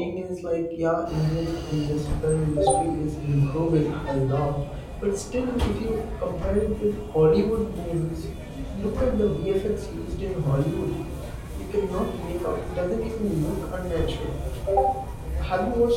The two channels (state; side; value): identical; both; correlation 1.00